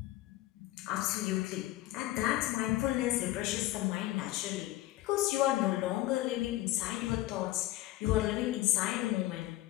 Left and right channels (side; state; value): right; quieter; 16.2 dB